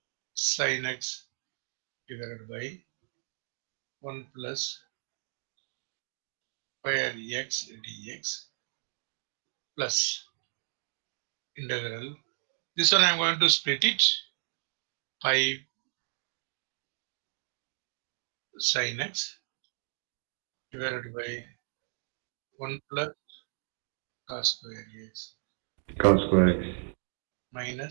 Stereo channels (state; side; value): silent; left; digital silence